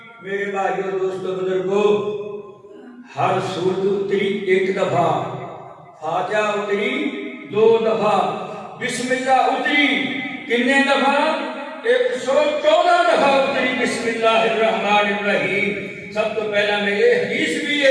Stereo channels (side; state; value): both; identical; correlation 1.00